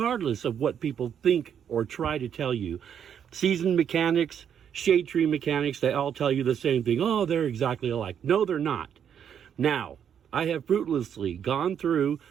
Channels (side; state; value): left; quieter; 8.5 dB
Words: of what people think or try to tell you. Seasoned mechanics, shade tree mechanics, they all tell you the same thing. Oh, they're exactly alike. No, they're not. Now, I have fruitlessly gone through